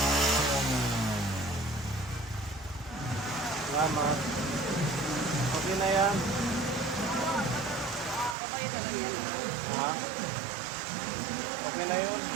Salamat. Okay na yan. Ha? Okay na yun.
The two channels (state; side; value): drops out; left; at 8.3 s